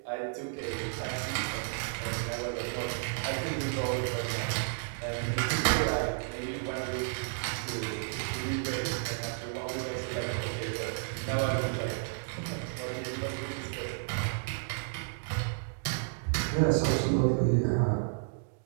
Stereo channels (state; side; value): silent; left; digital silence